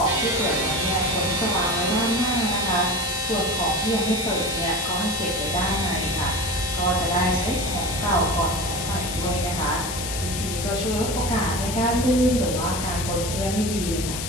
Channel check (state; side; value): noise; left; hiss, 5 dB below the sound